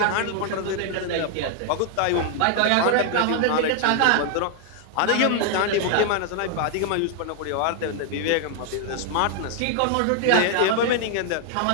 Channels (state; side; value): different; both; correlation 0.00